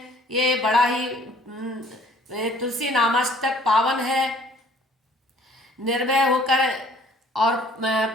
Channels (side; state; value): both; normal; correlation 0.56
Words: ये बड़ा ही तुलसी नामाष्टक पावन है। निर्भय होकर और